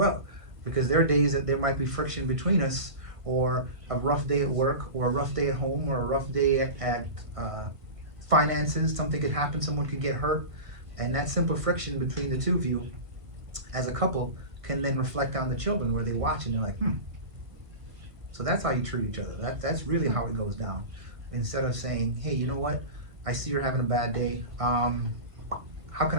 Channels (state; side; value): late; left; 1.5 ms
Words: because there are days that there might be friction between us, or a rough day at work, or a rough day at home, or a rough day at finances. Something could happen, someone could get hurt, and that simple friction between the two of you as a couple can then reflect on the children, where they watch and they're like, so that's how you treat each other. That's really how it goes down. Instead of saying, hey, you know what, I see you're having a bad day, how can